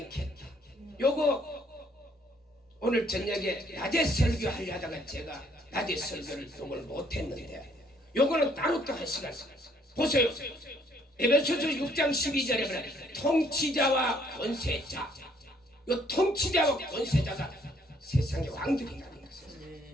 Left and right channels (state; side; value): normal; both; correlation 0.65